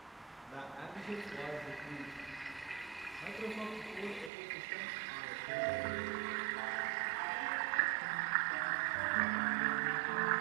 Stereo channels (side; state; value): left; drops out; at 4.3 s